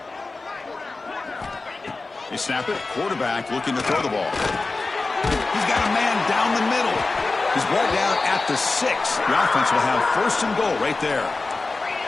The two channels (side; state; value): right; quieter; 3.6 dB